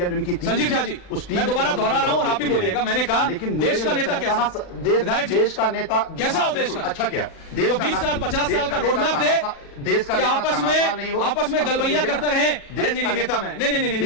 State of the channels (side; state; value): right; late; 39 ms